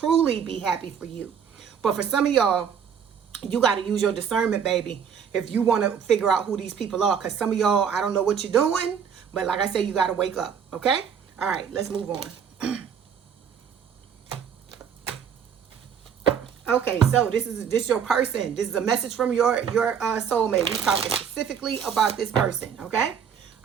be happy for you. But for some of y'all, You got to use your discernment, baby, if you want to figure out who these people are. Because some of y'all, I don't know what you're doing, but like I said, you got to wake up, okay? All right, let's move on. Okay, so this is your person. This is a message from your soulmate. We're talking specifically about this person, okay?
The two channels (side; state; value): left; quieter; 7.5 dB